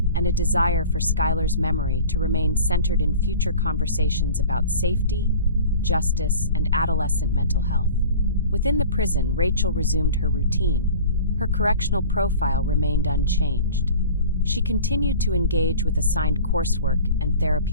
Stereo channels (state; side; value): inverted; both; correlation -0.41